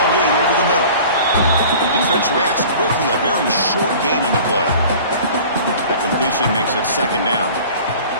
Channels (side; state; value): both; inverted; correlation -0.43